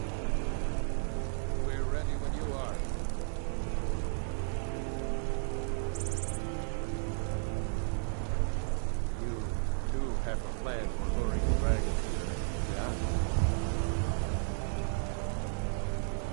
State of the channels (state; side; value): silent; left; 55 dB below the other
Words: We're ready when you are. You do have a plan for luring the dragon here, yeah?